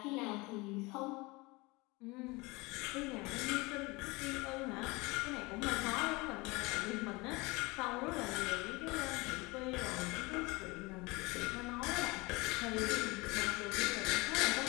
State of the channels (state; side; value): quieter; right; 24.3 dB